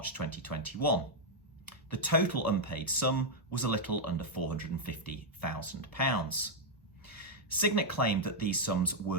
2021. The total unpaid sum was a little under £450,000. Signet claimed that these sums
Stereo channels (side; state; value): both; normal; correlation -0.03